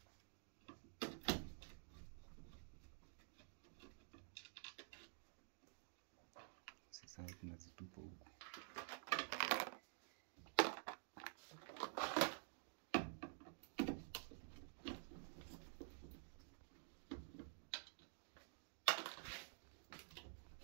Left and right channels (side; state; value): left; silent; digital silence